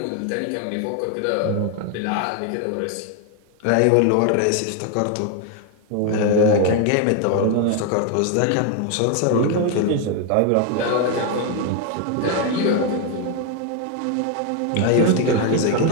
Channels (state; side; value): different; both; correlation 0.01